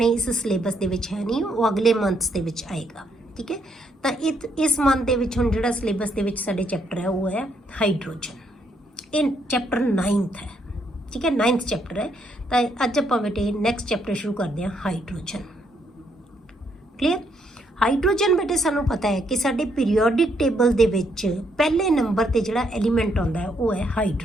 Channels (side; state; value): both; normal; correlation 0.74